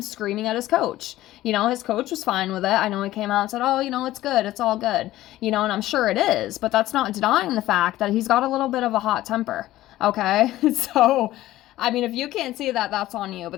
screaming at his coach. His coach was fine with it. I know he came out and said, oh, it's good. It's all good. And I'm sure it is. But that's not denying the fact that he's got a little bit of a hot temper. Okay? So, if you can't see that, that's on you.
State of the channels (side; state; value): right; quieter; 15.4 dB